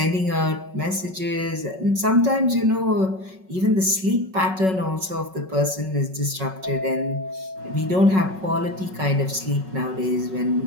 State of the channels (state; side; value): late; left; 5.4 ms